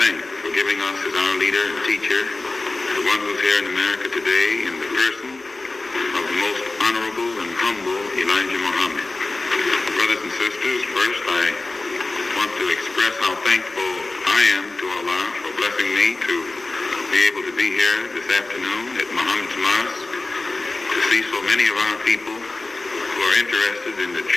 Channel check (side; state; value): right; quieter; 3.2 dB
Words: for giving us as our leader and teacher, the one who's here in America today in the person of the most honorable and humble Elijah Muhammad. Brothers and sisters, first I want to express how thankful I am to Allah for blessing me to be able to be here this afternoon at Muhammad's Mosque to see so many of our people who are interested in the